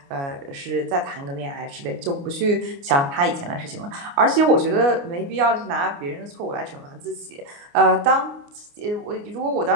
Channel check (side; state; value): left; late; 29 ms